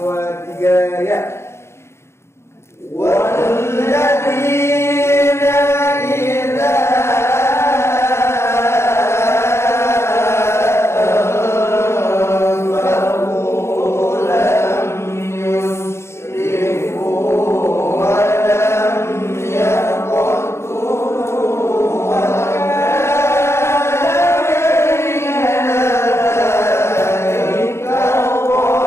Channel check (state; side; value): late; right; 0.13 ms